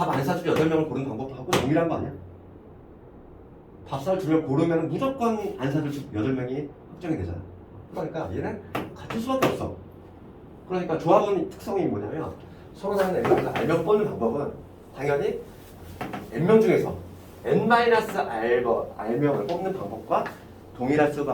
안 사줄 8명을 고르는 방법하고 동일한 거 아니야? 밥 살 2명 고르면 무조건 안 사줄 8명이 확정이 되잖아. 그러니까 얘는 같을 수밖에 없어. 그러니까 조합은 특성이 뭐냐면 서로 다른 N명에서 R명 뽑는 방법은 당연히 N명 중에서 N-R명을 뽑는 방법과 동일할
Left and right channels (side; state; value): both; identical; correlation 1.00